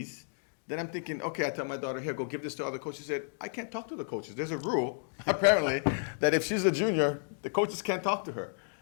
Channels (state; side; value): silent; right; digital silence